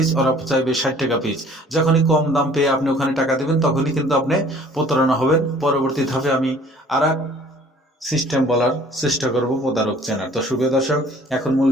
ওরা চাইবে 60 টাকা পিস। যখনই কম দাম পেয়ে আপনি ওখানে টাকা দেবেন তখনই কিন্তু আপনি প্রতারণা হবেন। পরবর্তী ধাপে আমি আর সিস্টেম বলার চেষ্টা করব প্রতারক চেনার। তো সুপ্রিয় দর্শক, এখন মূল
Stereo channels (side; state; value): both; normal; correlation 0.53